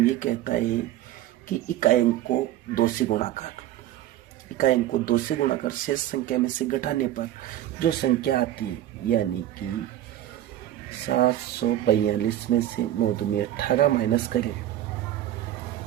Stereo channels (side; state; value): left; quieter; 12.9 dB